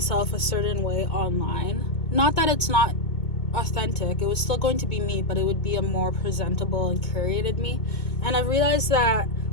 a certain way online. Not that it's not authentic, it was still going to be me, but it would be a more presentable and curated me. And I realized that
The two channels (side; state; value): right; late; 2.2 ms